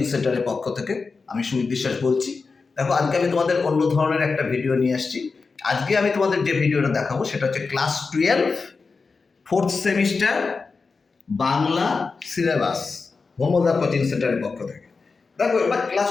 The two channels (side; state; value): right; quieter; 4.5 dB